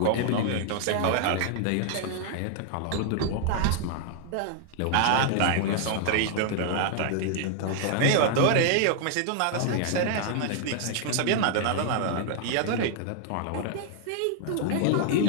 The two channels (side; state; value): both; different; correlation 0.00